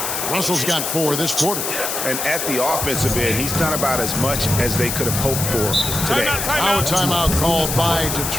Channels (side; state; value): left; noise; hiss, 2 dB below the sound